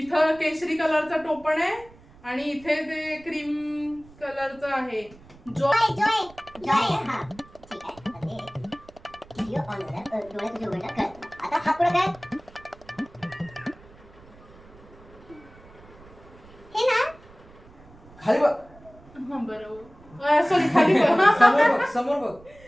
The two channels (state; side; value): noise; right; rumble, 23 dB below the sound